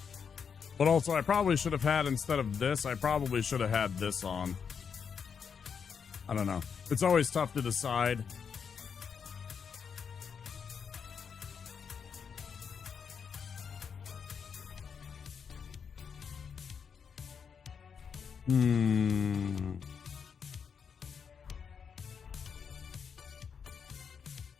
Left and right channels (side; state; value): right; quieter; 6.6 dB